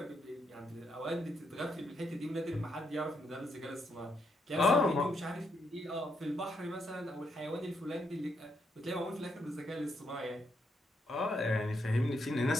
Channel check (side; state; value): both; normal; correlation 0.78